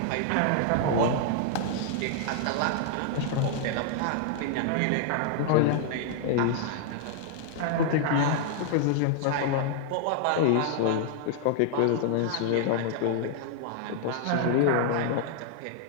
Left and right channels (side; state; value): both; different; correlation -0.01